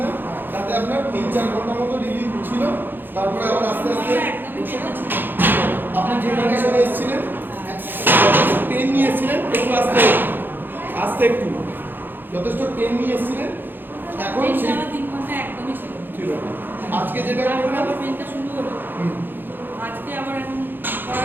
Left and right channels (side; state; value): left; late; 0.095 ms